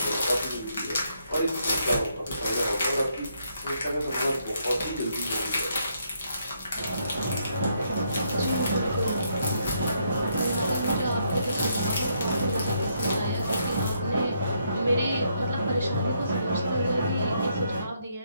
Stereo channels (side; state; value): both; inverted; correlation -0.74